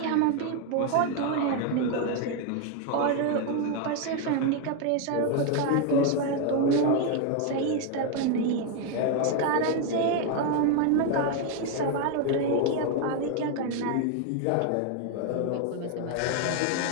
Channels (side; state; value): both; different; correlation 0.01